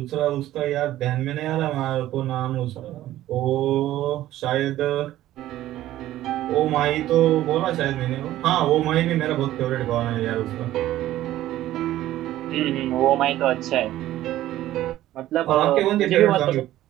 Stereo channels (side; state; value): left; quieter; 14.2 dB